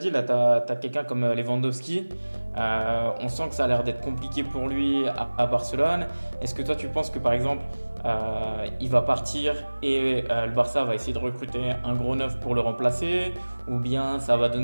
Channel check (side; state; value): both; inverted; correlation -1.00